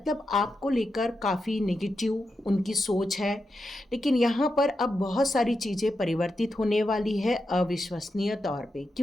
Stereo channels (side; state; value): both; normal; correlation 0.87